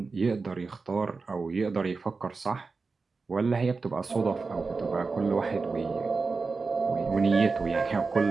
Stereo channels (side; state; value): left; quieter; 4.3 dB